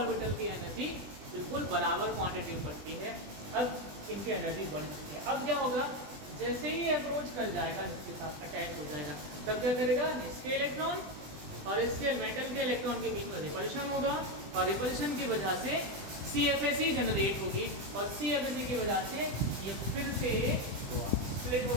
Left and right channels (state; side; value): late; left; 20 ms